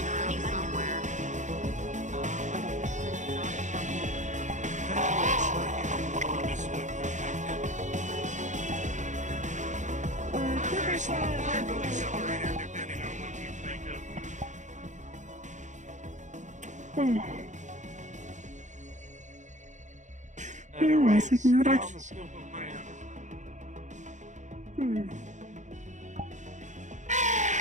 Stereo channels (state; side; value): late; left; 0.35 ms